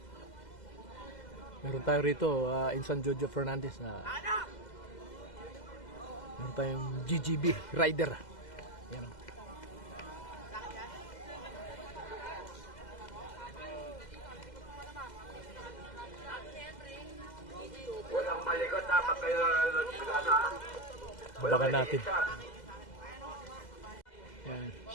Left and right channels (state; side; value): late; right; 2.0 ms